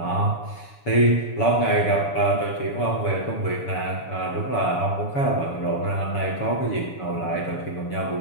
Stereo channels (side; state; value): right; late; 7.0 ms